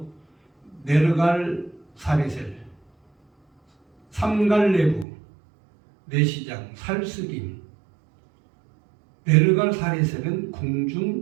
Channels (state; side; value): drops out; left; at 5.1 s